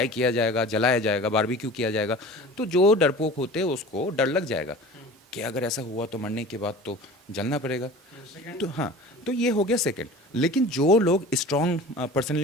किया जाएगा, जलाया जाएगा, बारबेक्यू किया जाएगा। तो जो डरपोक होते हैं उसको डर लग जाएगा कि अगर ऐसा हुआ तो मरने के बाद तो जलना पड़ेगा। तो हाँ, तो ये हो गया सेकंड। लेकिन जो लोग स्ट्रॉन्ग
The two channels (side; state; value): both; normal; correlation 0.39